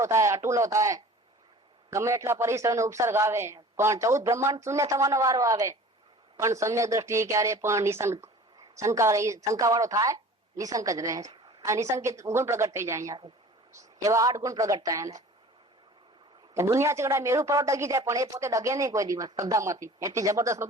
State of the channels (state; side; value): normal; both; correlation 0.44